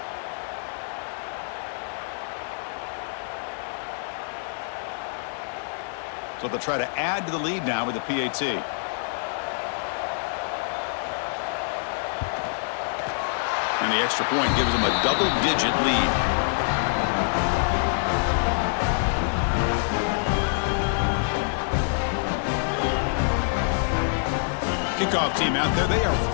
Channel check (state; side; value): silent; right; digital silence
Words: So they'll try to add to the lead now with the PAT. And the extra point gives them a double-digit lead. Kickoff team out there. They are